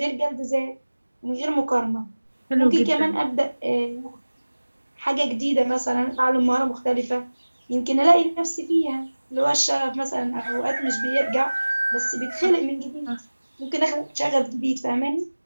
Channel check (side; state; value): both; inverted; correlation -1.00